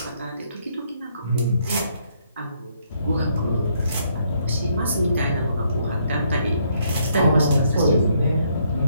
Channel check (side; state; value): both; inverted; correlation -0.71